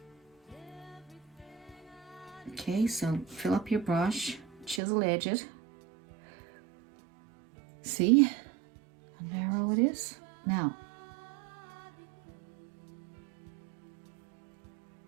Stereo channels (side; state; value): left; drops out; at 4.8 s